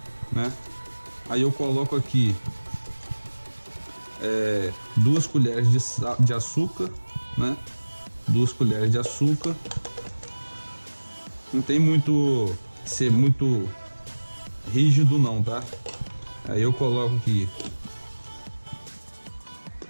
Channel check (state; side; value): inverted; both; correlation -1.00